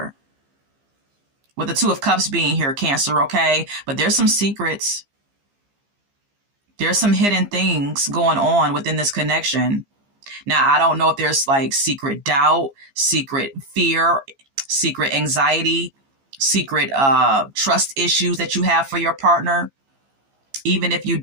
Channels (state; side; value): late; left; 15 ms